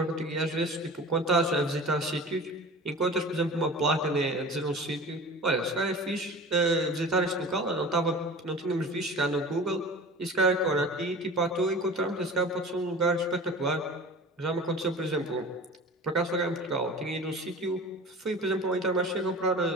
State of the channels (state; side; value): normal; both; correlation 0.37